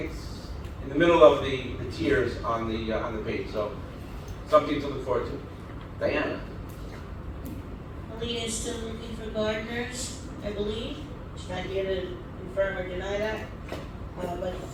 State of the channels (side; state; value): both; identical; correlation 1.00